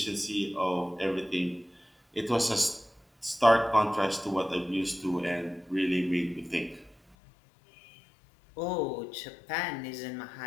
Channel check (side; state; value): right; drops out; at 7.2 s